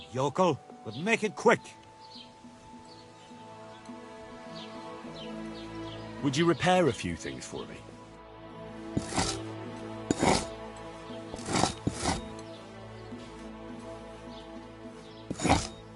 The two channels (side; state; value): both; identical; correlation 1.00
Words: yokel? But make it quick. Would you repair a few things for me?